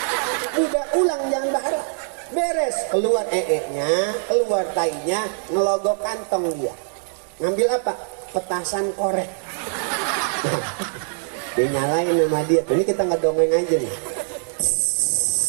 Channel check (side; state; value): left; silent; digital silence